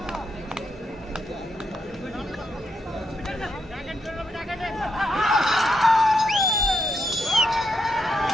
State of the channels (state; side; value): normal; both; correlation 0.80